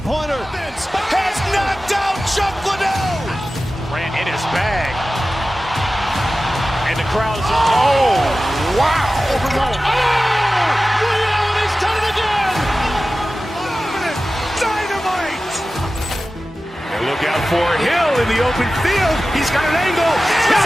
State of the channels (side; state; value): both; normal; correlation 0.95